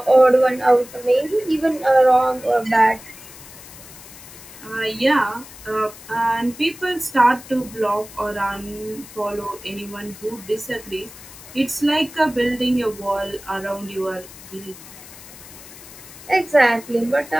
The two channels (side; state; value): left; noise; hiss, 18 dB below the sound